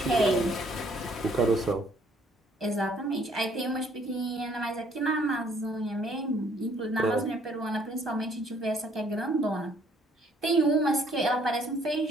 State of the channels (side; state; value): both; normal; correlation 0.63